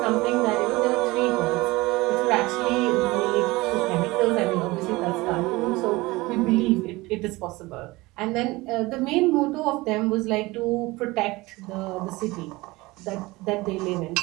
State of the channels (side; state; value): left; quieter; 21.5 dB